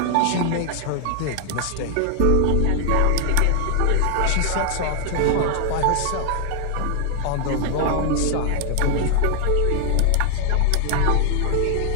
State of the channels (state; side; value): different; both; correlation 0.00